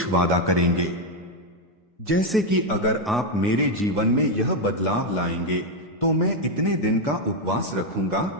वादा करेंगे, जैसे कि अगर आप मेरे जीवन में यह बदलाव लाएंगे तो मैं इतने दिन का उपवास रखूंगा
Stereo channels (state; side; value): normal; both; correlation 0.03